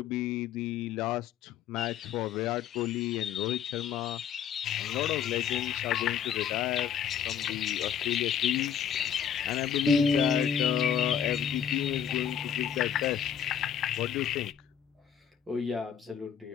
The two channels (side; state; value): right; quieter; 8.6 dB